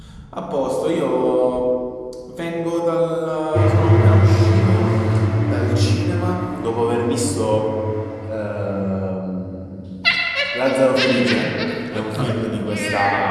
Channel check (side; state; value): both; identical; correlation 1.00